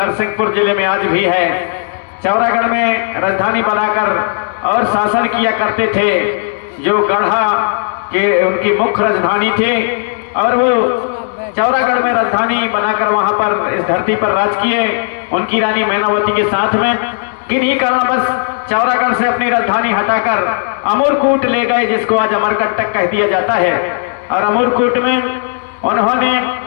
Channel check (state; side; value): silent; right; 70 dB below the other